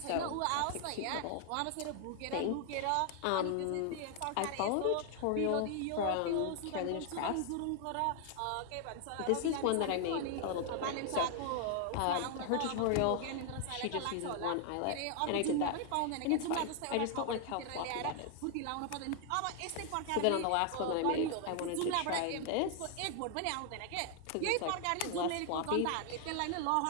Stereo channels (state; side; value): different; both; correlation 0.00